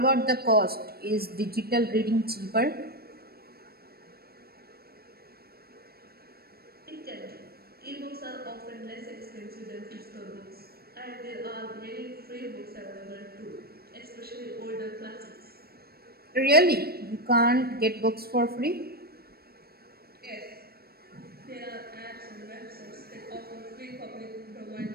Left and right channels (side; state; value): left; late; 0.45 ms